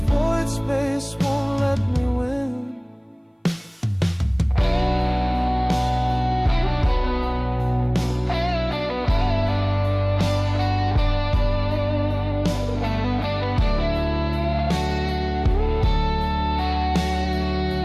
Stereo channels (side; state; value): both; identical; correlation 1.00